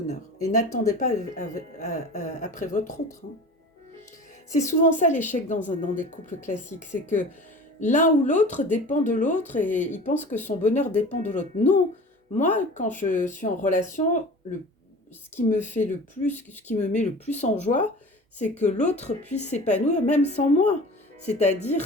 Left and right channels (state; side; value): normal; both; correlation 0.39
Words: Et n'attendez pas après votre autre. Hein. C'est souvent ça l'échec dans des couples classiques, c'est que l'un ou l'autre dépend de l'autre et il pense que son bonheur dépend de l'autre. Non, moi, quand je suis en relation, ce qui me met le plus en joie, c'est que l'autre puisse s'épanouir même sans moi.